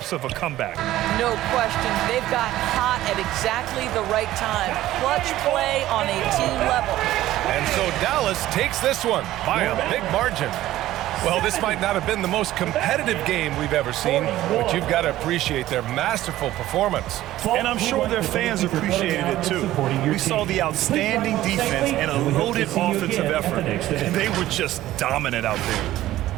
of a comeback. No question. They've got hot at exactly the right time. Clutch play on a team level. And so Dallas takes this one by a big margin. Well, this might not have been the most competitive game we've ever seen, but you've got to appreciate their masterful performance. And I'm sure their fans appreciated it too. We saw the outstanding defense and a loaded offensive effort. And they were just dominant out there.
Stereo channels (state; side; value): quieter; left; 14.8 dB